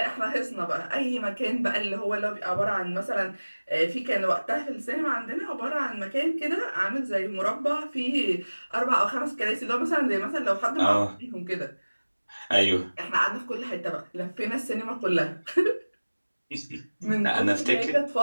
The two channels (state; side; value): inverted; both; correlation -1.00